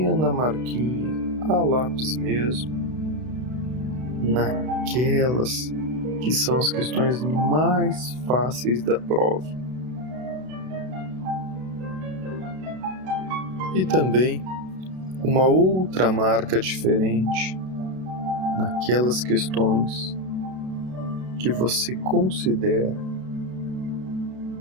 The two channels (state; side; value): late; left; 32 ms